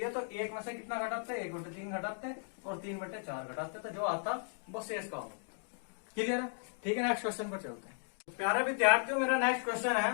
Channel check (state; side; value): silent; right; digital silence